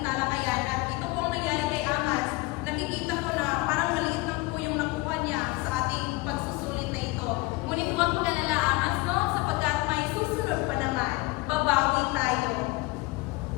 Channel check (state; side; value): quieter; right; 22.7 dB